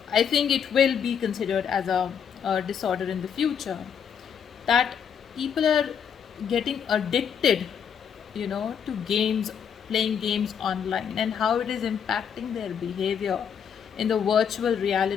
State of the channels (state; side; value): quieter; right; 7.6 dB